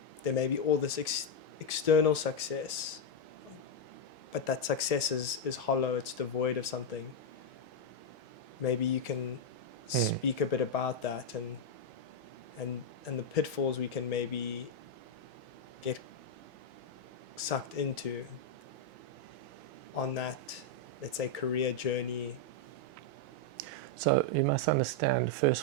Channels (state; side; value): normal; both; correlation 0.01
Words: there may be all this external success, but that success is hollow, it's devoid of something? Maybe you can speak a bit about that, and the pitfalls we can maybe get sucked into on that, let's say, career journey. So you must understand first